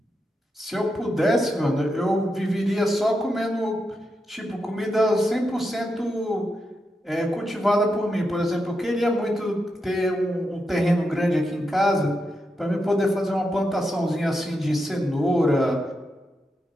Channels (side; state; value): both; normal; correlation 0.86